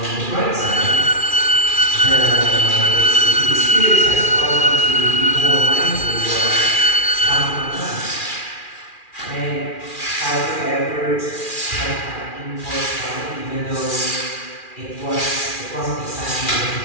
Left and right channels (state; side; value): late; right; 2.4 ms